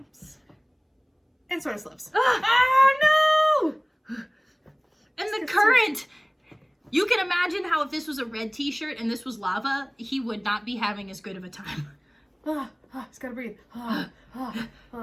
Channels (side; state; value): both; identical; correlation 1.00